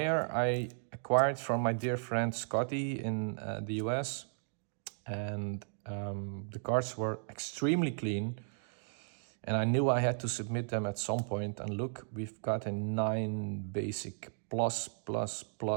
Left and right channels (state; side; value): silent; left; digital silence